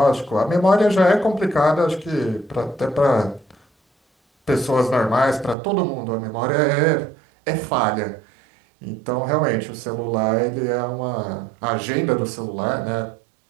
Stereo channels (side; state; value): left; drops out; at 5.6 s